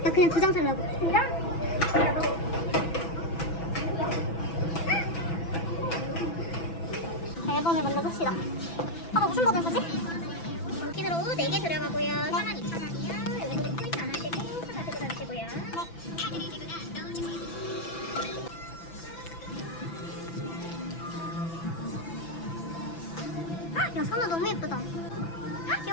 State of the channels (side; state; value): right; late; 6.0 ms